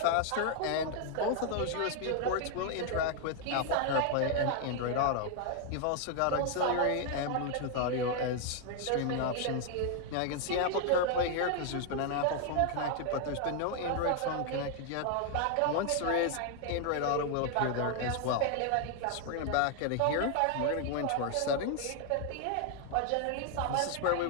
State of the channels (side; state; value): both; different; correlation 0.00